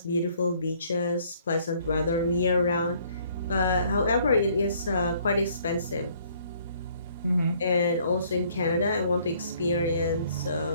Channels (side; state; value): both; inverted; correlation -0.62